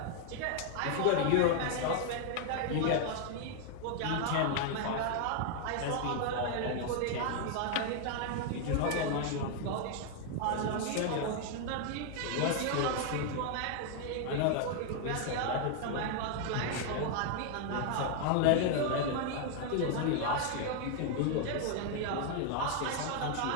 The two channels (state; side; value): different; both; correlation 0.00